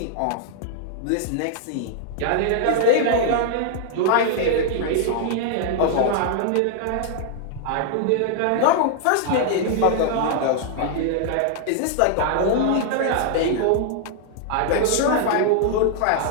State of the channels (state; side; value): different; both; correlation -0.01